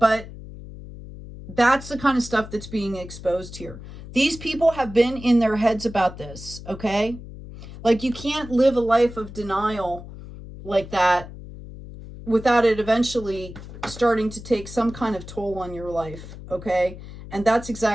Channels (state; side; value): noise; left; hum, 14 dB below the sound